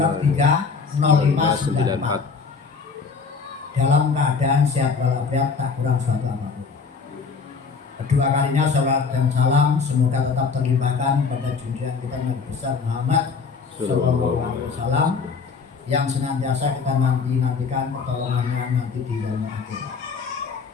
0594 dalam keadaan sehat walafiat, tak kurang suatu apapun. Kedua kalinya salawat dan salam semoga tetap terlimpahkan pada junjungan kita Nabi besar Muhammad Sallallahu Alaihi Wasallam yang senantiasa kita nantikan pertolongannya nanti di yaumul akhir.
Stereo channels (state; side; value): quieter; right; 5.2 dB